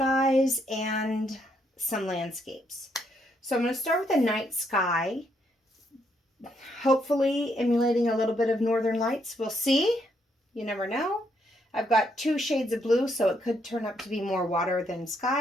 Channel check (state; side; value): normal; both; correlation 0.74